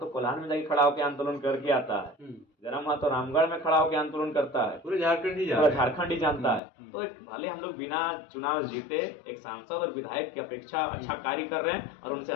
कोल्हान में जाके खड़ा होकर आंदोलन करके आता है, जयराम महतो रामगढ़ में खड़ा होकर आंदोलन करता है, पूरे झारखंड ही पूरा झारखंड ही जानता है। तो भले हम लोग बिना चुनाव जीते एक सांसद और विधायक की अपेक्षा अच्छा कार्य कर रहे हैं और उनसे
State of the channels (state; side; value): drops out; right; at 6.6 s